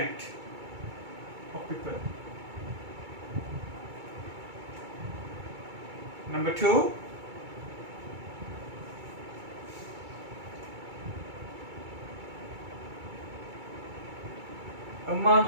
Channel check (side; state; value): left; late; 2.3 ms